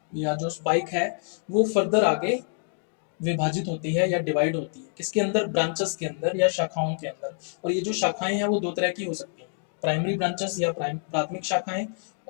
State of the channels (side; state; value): right; silent; 60 dB below the other